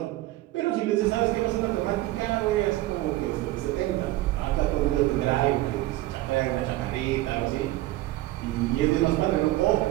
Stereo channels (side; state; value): left; quieter; 17.2 dB